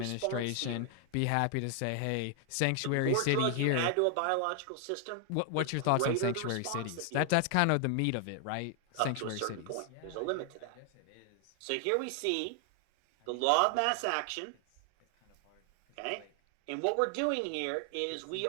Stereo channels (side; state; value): both; different; correlation 0.00